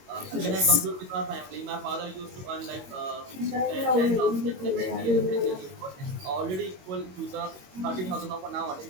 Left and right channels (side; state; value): left; late; 22 ms